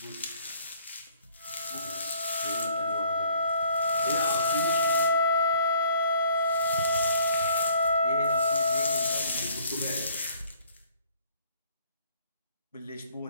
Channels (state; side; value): inverted; both; correlation -0.60